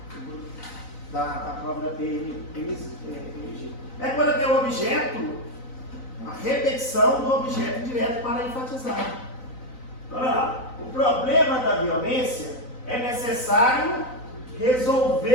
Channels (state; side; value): late; right; 3.9 ms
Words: da prova da PMG. É quando tem um objeto, a repetição do objeto direto para enfatizar. Olha lá, o problema da violência é necessário